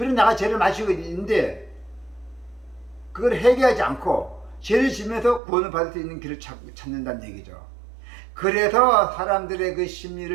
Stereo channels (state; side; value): drops out; left; at 5.4 s